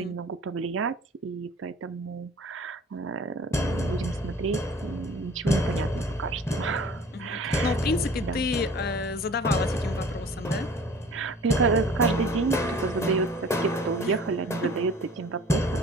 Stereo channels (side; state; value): both; normal; correlation 0.47